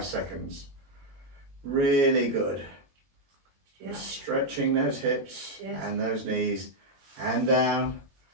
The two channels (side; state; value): left; late; 22 ms